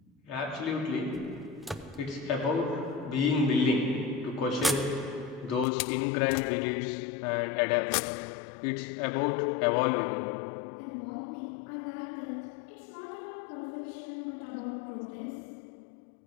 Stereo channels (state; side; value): drops out; right; at 5.7 s